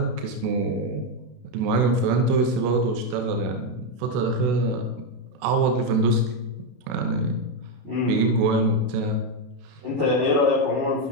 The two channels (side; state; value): left; late; 32 ms